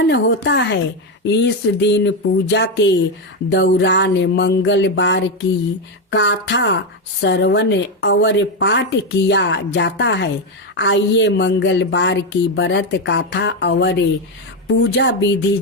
होता है। इस दिन पूजा के दौरान मंगलवार की कथा श्रवण और पाठ किया जाता है। आइए मंगलवार की व्रत कथा और पूजा विधि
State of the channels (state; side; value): normal; both; correlation 0.08